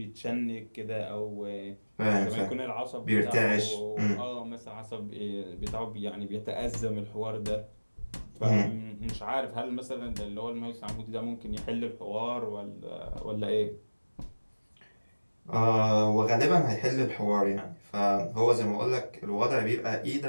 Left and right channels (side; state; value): both; inverted; correlation -1.00